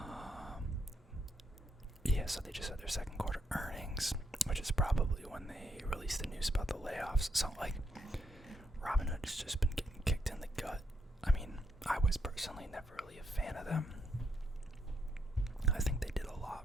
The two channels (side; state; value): both; normal; correlation 0.78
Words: So they just had their second quarter earnings, which is probably when they released the news about the layoffs. So, Robinhood has just been getting kicked in the gut. I was personally never really a fan of them. I think they did a lot